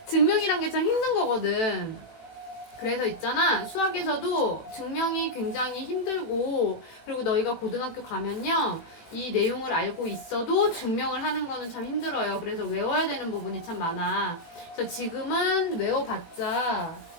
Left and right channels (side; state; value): right; late; 18 ms